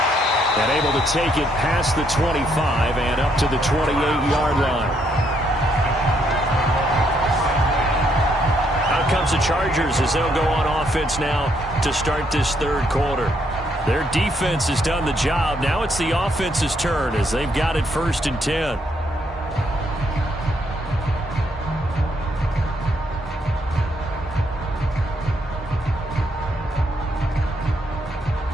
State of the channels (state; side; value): normal; both; correlation 0.73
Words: And able to take it past the 25 and up to the 28-yard line. Out comes the Chargers as they'll go on offense now to start this third quarter. Their defense has done the job. Now it's the offense's turn as they've got it 1st and 10.